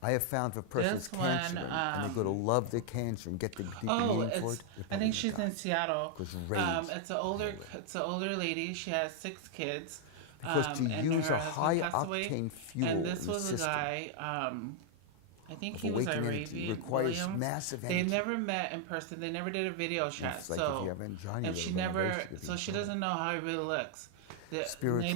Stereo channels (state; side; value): different; both; correlation 0.00